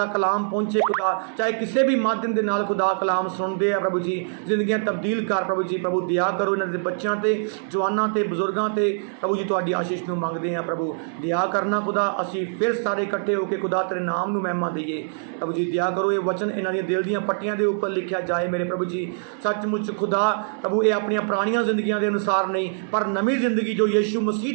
ਕਲਾਮ ਪਹੁੰਚੇ ਖੁਦਾ, ਚਾਹੇ ਕਿਸੇ ਵੀ ਮਾਧਿਅਮ ਦੇ ਨਾਲ ਖੁਦਾ ਕਲਾਮ ਸੁਣਦੇ ਆ ਪ੍ਰਭੂ ਜੀ। ਜ਼ਿੰਦਗੀਆਂ ਤਬਦੀਲ ਕਰ ਪ੍ਰਭੂ ਜੀ। ਪ੍ਰਭੂ ਦਇਆ ਕਰੋ ਇਹਨਾਂ ਦੇ ਬੱਚਿਆਂ ਤੇ, ਜਵਾਨਾਂ ਤੇ, ਬਜ਼ੁਰਗਾਂ ਤੇ ਪ੍ਰਭੂ ਜੀ। ਤੁਹਾਡੀ ਆਸ਼ੀਸ਼ ਨੂੰ ਮੰਗਦੇ ਆ ਪ੍ਰਭੂ, ਦਇਆ ਕਰਨਾ ਖੁਦਾ। ਅਸੀਂ ਫਿਰ ਸਾਰੇ ਇਕੱਠੇ ਹੋ ਕੇ ਖੁਦਾ ਤੇਰੇ ਨਾਮ ਨੂੰ ਮਹਿਮਾ ਦਈਏ ਪ੍ਰਭੂ ਜੀ। ਦਇਆ ਕਰੋ, ਇਹ ਵਚਨ ਇਹਨਾਂ ਦੀਆਂ ਦਿਲ ਦੀਆਂ ਪੱਟੀਆਂ ਦੇ ਉੱਪਰ ਲਿਖਿਆ ਜਾਏ ਮੇਰੇ ਪ੍ਰਭੂ ਜੀ। ਸੱਚਮੁੱਚ ਖੁਦਾ ਪ੍ਰਭੂ ਇਹ ਆਪਣੀਆਂ ਪੁਰਾਣੀਆਂ ਜ਼ਿੰਦਗੀਆਂ ਦੇ ਅਨੁਸਾਰ ਨਹੀਂ, ਪਰ ਨਵੀਂ ਜ਼ਿੰਦਗੀ ਜੋ ਯਿਸੂ ਮਸੀਹ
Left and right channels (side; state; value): left; silent; 62 dB below the other